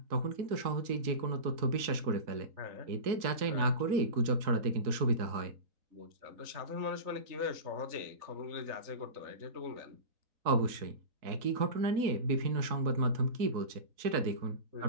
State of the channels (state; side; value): late; left; 3.9 ms